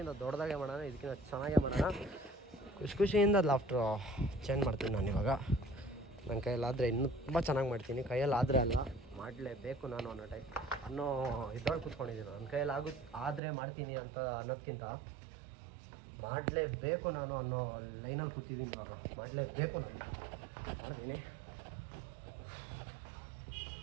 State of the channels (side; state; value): left; drops out; at 13.4 s